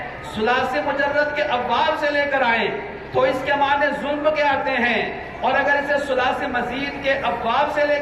ثلاثی مجرد کے ابواب سے لے کر آئیں تو اس کے معنی ظلم کے آتے ہیں، اور اگر اسے ثلاثی مزید کے ابواب سے لے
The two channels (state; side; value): identical; both; correlation 1.00